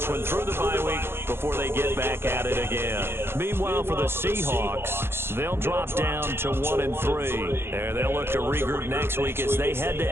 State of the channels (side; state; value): left; late; 0.11 ms